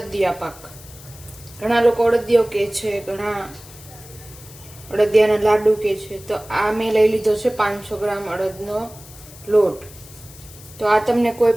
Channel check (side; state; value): left; noise; hiss, 19 dB below the sound